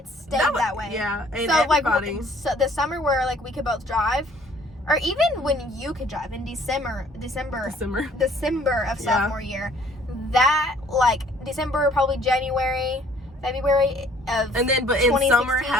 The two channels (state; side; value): normal; both; correlation 0.58